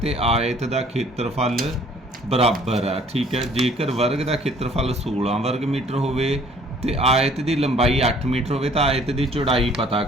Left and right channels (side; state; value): both; normal; correlation 0.56